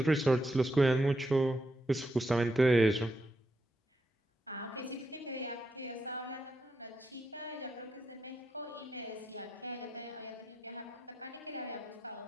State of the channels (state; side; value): normal; both; correlation 0.83